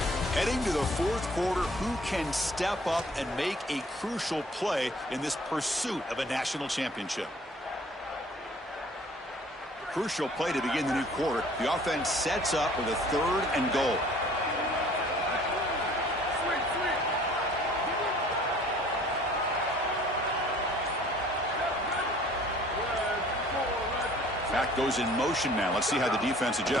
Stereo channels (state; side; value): normal; both; correlation 0.54